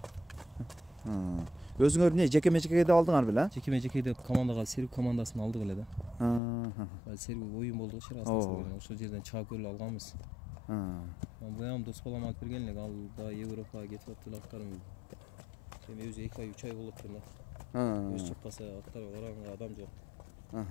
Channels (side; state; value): right; drops out; at 6.4 s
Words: Өзүңөр эмне жеке-мечекеде алдыңар беле? Жеке-мечекеде командага Серб командасын алдык эле да. Серб оюн болду шырасында. Ошол жерден чыгып көрүп алганбыз. Буям дос балам алып берген элек, ал да Европага кетип аптыр аттарым. Эми өзү 2 ай 3 ай болуп турду. Өз чаппаса аттар оранга адам жок.